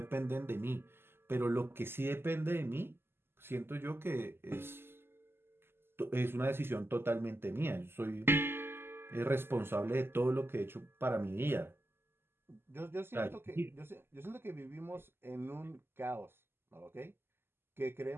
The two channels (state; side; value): late; left; 0.11 ms